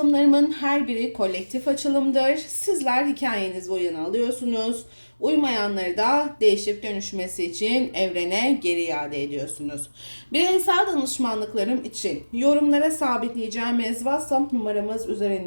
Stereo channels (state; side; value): inverted; both; correlation -1.00